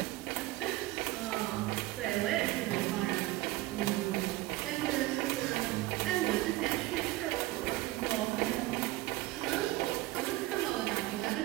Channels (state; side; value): quieter; left; 18.3 dB